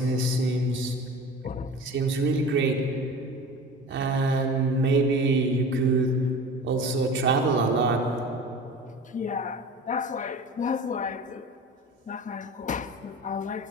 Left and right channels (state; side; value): normal; both; correlation 0.36